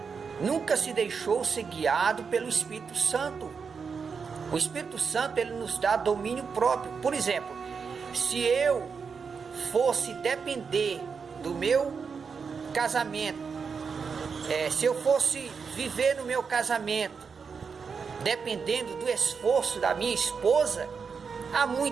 nunca se deixou ser guiado pelo Espírito Santo. O Espírito Santo, ele nos dá domínio próprio. Por exemplo, se eu fosse depender do meu casamento, se eu fosse viver no meu casamento dependendo do esforço da minha esposa, há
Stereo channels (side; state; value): left; quieter; 5.7 dB